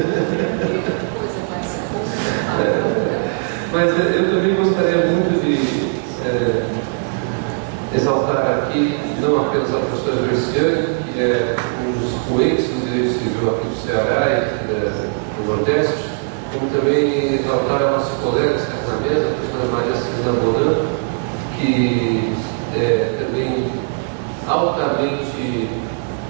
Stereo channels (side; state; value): left; silent; 63 dB below the other